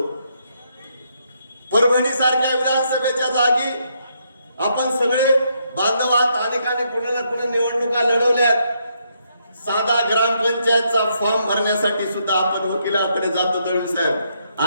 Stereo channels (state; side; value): inverted; both; correlation -0.75